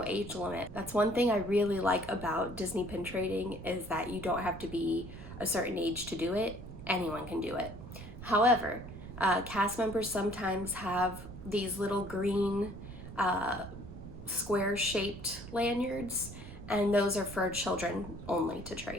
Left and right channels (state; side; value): noise; right; rumble, 12 dB below the sound